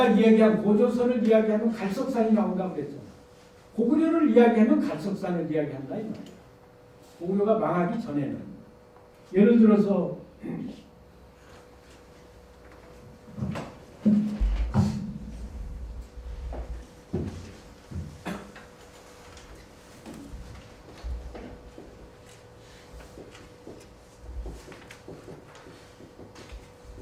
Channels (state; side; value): identical; both; correlation 1.00